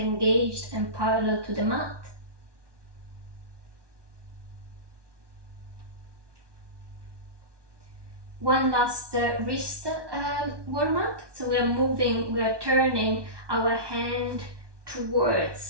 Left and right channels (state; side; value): late; left; 1.2 ms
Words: and parallel to the mat. One last wrist warm up. So we are turning our hand